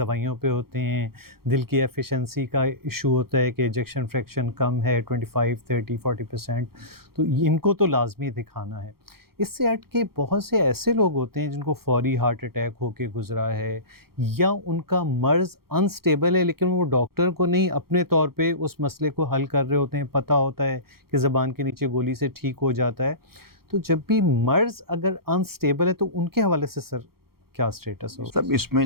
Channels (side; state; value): left; late; 0.94 ms